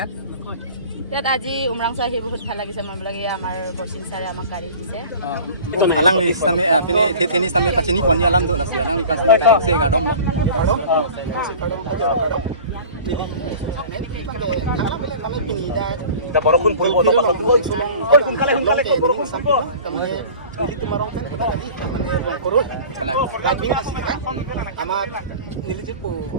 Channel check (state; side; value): inverted; both; correlation -0.41